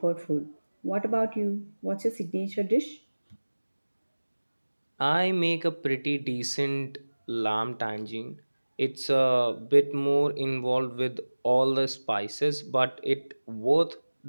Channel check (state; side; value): inverted; both; correlation -1.00